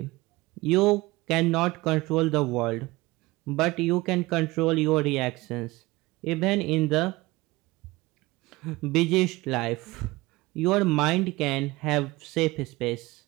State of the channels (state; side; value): quieter; left; 20.9 dB